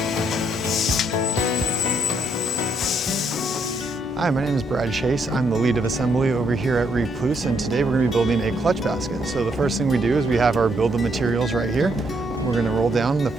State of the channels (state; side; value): normal; both; correlation 0.74